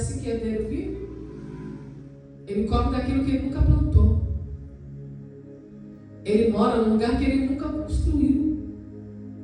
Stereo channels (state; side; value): identical; both; correlation 1.00